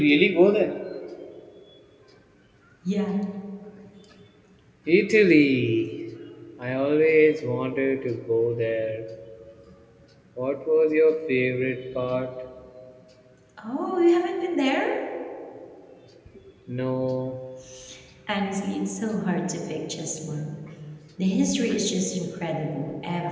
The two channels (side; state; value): both; identical; correlation 1.00